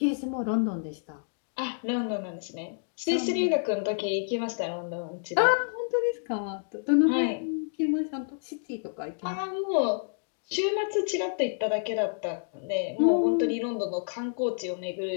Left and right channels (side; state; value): right; silent; digital silence